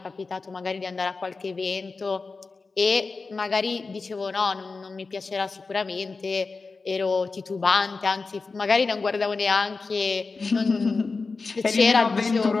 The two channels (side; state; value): right; quieter; 4.1 dB